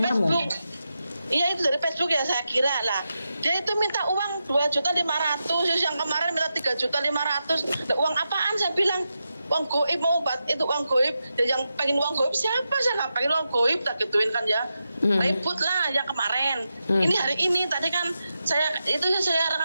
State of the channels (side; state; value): both; inverted; correlation -0.88